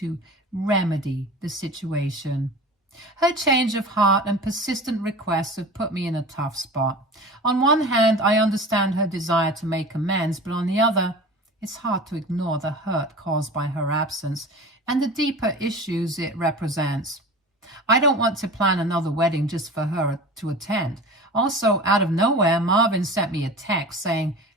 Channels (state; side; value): normal; both; correlation 0.36